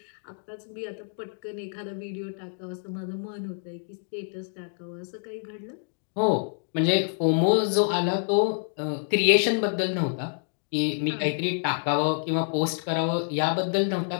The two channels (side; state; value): right; silent; digital silence